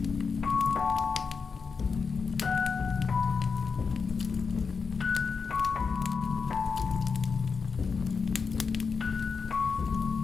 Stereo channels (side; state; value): right; quieter; 5.3 dB